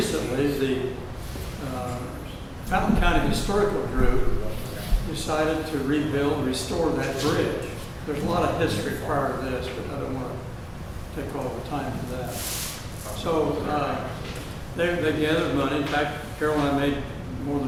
the Fountain County Historical Group decided to restore that bridge. There's a lot of history prior to this, but I don't want take all the time for that. So, they gathered money. In fact, Carol and I made more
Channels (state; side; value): identical; both; correlation 1.00